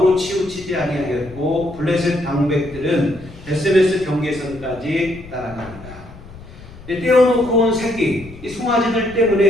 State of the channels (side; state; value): left; noise; rumble, 18 dB below the sound